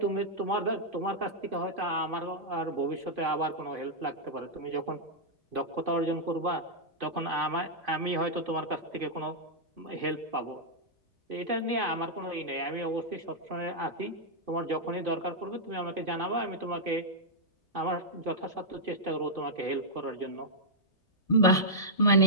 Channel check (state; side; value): normal; both; correlation -0.08